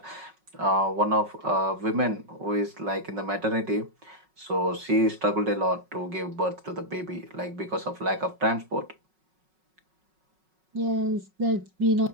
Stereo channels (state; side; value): late; left; 5.4 ms